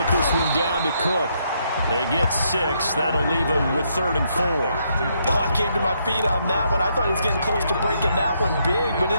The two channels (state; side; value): inverted; both; correlation -0.75